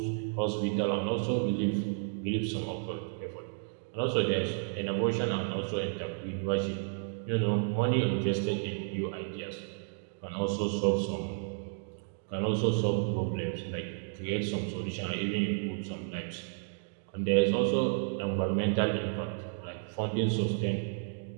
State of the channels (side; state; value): left; silent; digital silence